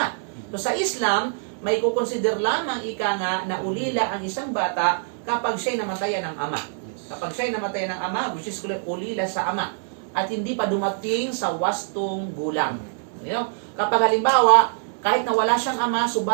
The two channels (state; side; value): silent; left; digital silence